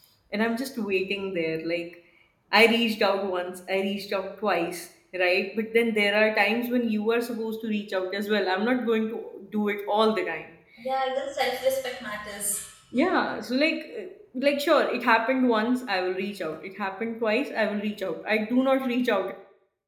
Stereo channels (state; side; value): identical; both; correlation 1.00